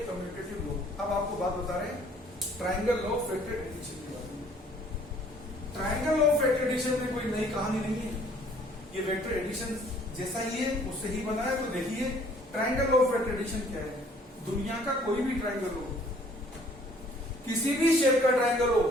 commutative law. अब आपको बात बता रहे हैं triangle law of vector addition के बारे में। Triangle law of vector addition में कोई नई कहानी नहीं है, ये वेक्टर एडिशन जैसा ही है, उससे ही बना है। तो देखिए triangle law of vector addition क्या है, दुनिया का कोई भी ट्रायंगल हो, किसी भी शेप का ट्रायंगल हो,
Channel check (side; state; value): both; normal; correlation 0.58